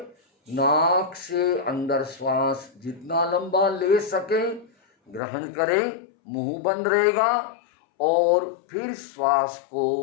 नाक से अंदर श्वास जितना लंबा ले सके ग्रहण करें, मुंह बंद रहेगा, और फिर श्वास को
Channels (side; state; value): right; drops out; at 5.2 s